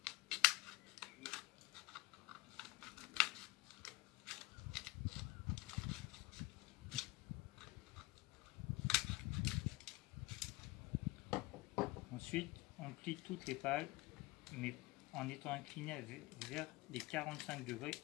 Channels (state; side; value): quieter; right; 21.6 dB